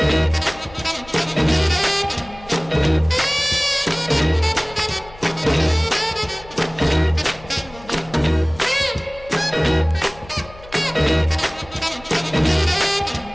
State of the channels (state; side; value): noise; left; hum, 21 dB below the sound